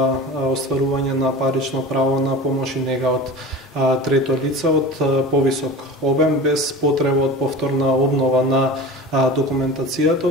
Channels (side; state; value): both; normal; correlation 0.34